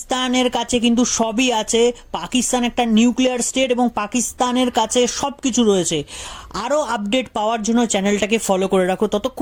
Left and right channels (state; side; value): identical; both; correlation 1.00